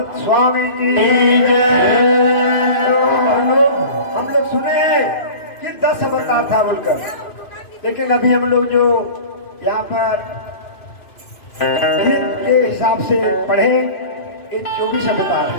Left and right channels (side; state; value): right; late; 2.5 ms